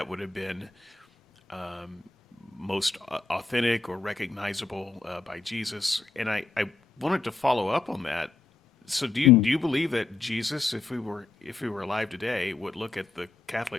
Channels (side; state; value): right; quieter; 3.7 dB